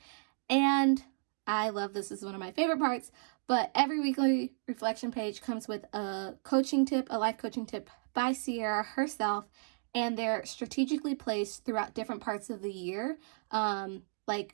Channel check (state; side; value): silent; left; digital silence